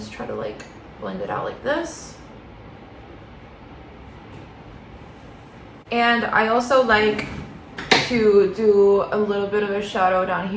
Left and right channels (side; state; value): both; identical; correlation 1.00